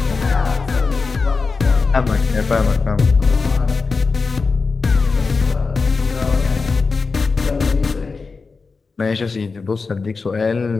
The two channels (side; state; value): right; quieter; 4.4 dB